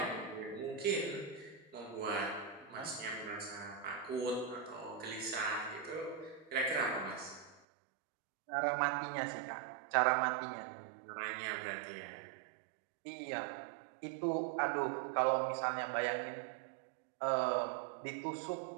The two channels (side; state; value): left; drops out; at 7.6 s